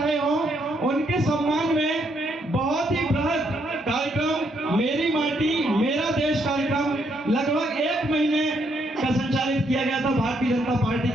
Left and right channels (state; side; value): normal; both; correlation 0.74